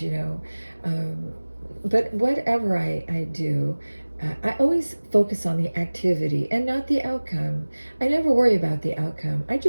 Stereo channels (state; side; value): inverted; both; correlation -1.00